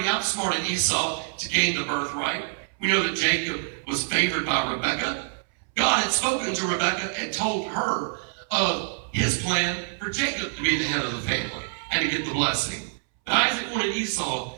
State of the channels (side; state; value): left; silent; 61 dB below the other